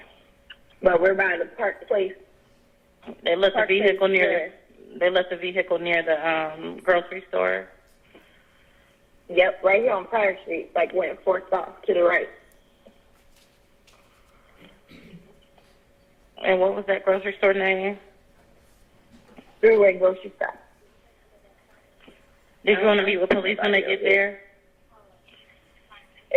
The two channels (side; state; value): both; identical; correlation 1.00